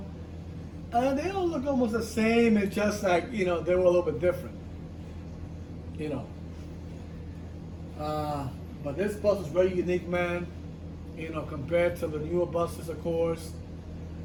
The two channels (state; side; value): identical; both; correlation 1.00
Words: look almost the same. It's just like, they were a little bit different, you know. But this bus is very unique, man, compared to the newer buses, of course.